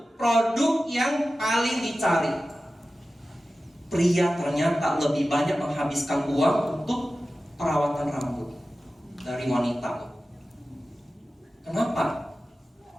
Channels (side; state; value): both; normal; correlation 0.95